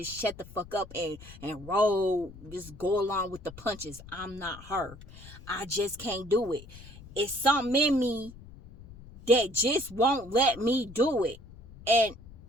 shut the fuck up and roll, just go along with the punches. I'm not her. I just can't do it. It's something in me that just won't let me do it. And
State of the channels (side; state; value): left; noise; rumble, 18 dB below the sound